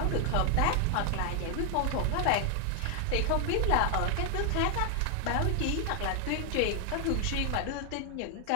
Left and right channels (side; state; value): both; different; correlation 0.00